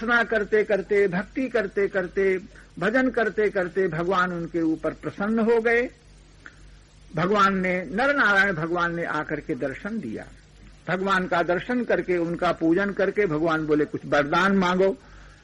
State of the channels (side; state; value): both; identical; correlation 1.00